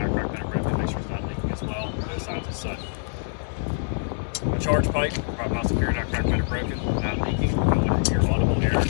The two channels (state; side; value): silent; right; 55 dB below the other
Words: cracked, fender broken. Make sure it's not leaking as well. No signs of soot. My charge pipe, prop mount secured, not cracked, fender broken. Not leaking. Going into your audible air. Got